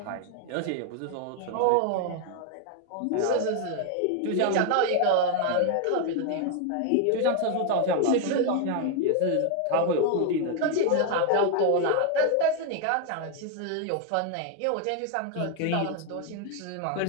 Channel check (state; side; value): different; both; correlation 0.01